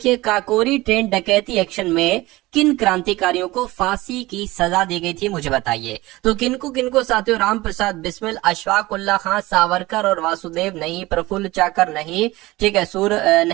काकोरी ट्रेन डकैती एक्शन में किन क्रांतिकारियों को फांसी की सजा दी गई थी, मुझे बताइए। तो किनको साथियों? राम प्रसाद बिस्मिल, अशफाक उल्लाह खां, सावरकर और वासुदेव नहीं, प्रफुल्ल चाकर नहीं, ठीक है, सूर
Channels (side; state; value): left; quieter; 19.6 dB